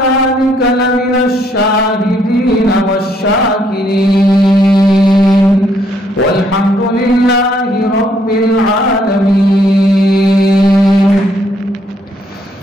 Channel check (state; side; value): normal; both; correlation 0.70